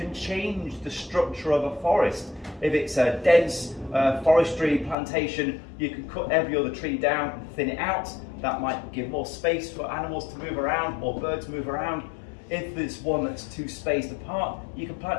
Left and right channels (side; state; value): right; drops out; at 5.0 s